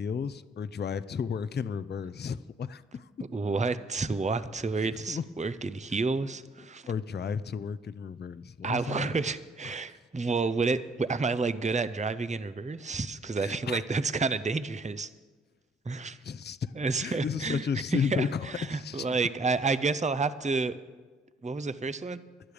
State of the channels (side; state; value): both; normal; correlation 0.62